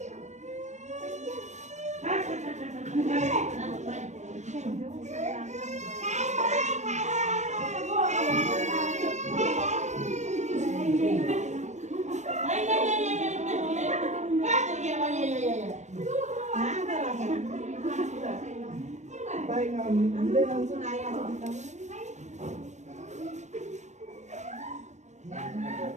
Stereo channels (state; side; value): late; left; 0.34 ms